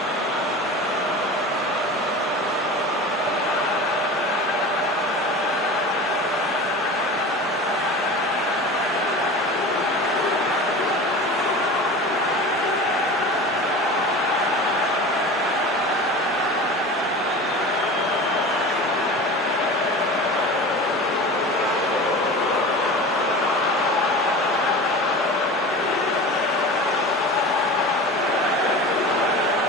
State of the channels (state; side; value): normal; both; correlation 0.34